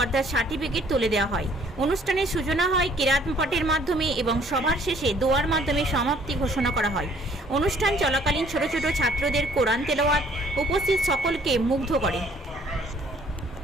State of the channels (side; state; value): both; normal; correlation 0.59